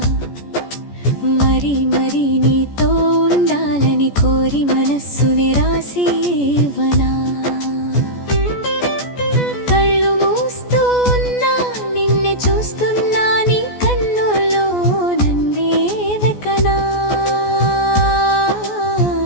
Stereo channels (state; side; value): late; right; 14 ms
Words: మరి మరి నీతో ఉండాలని కోరి మనస్సుని రాసి ఇవ్వనా కళ్ళు మూస్తూ ఉన్నా నిన్నే చూస్తున్నా నీ కన్నుల్లో నన్నే వెకనా